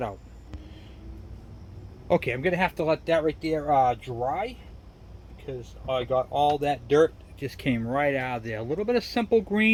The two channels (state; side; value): identical; both; correlation 1.00